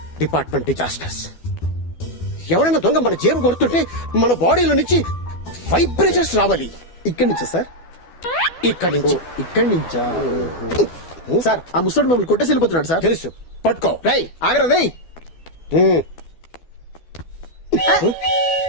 Department disasters. ఎవరైనా దొంగ మన జేబు కొడుతుంటే మన బాడీలో నుంచి వైబ్రేషన్స్ రావాలి. ఇక్కడి నుంచా సార్? ఇక్కడి నుంచి. ఇక్కడి నుంచా? సార్ ఆ ముసడు మమ్మల్ని కొట్టేసి వెళ్ళిపోతున్నాడు సార్. తెలుసు, పట్టుకో. రై ఆగరా రై.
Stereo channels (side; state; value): right; late; 12 ms